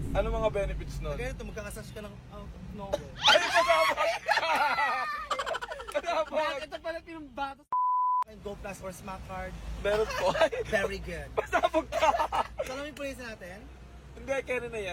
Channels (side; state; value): both; identical; correlation 1.00